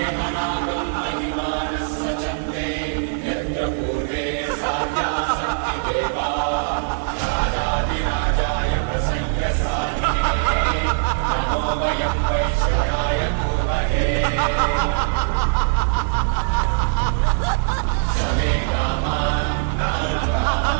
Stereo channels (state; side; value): silent; left; 65 dB below the other